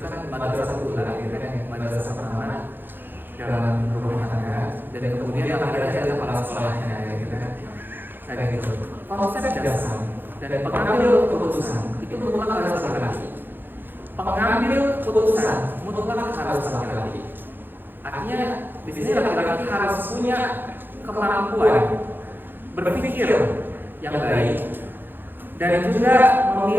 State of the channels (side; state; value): left; late; 0.096 ms